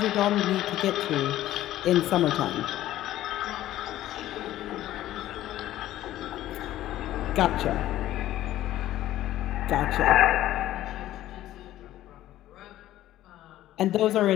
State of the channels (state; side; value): quieter; right; 14.0 dB